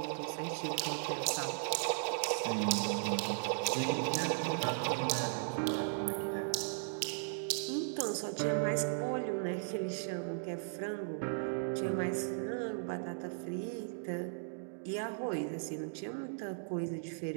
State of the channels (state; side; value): silent; left; digital silence